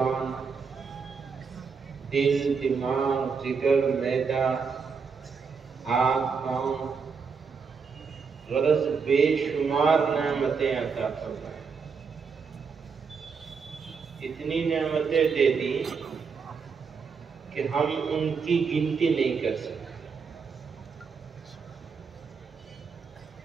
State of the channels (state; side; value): quieter; left; 5.5 dB